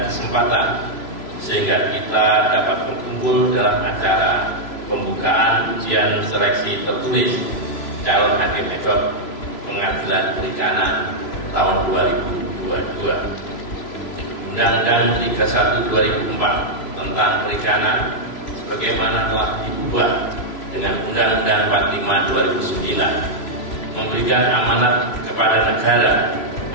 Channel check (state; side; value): late; right; 3.0 ms